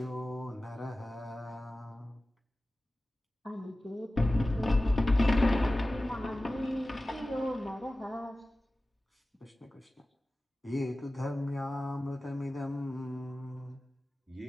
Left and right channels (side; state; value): both; normal; correlation 0.96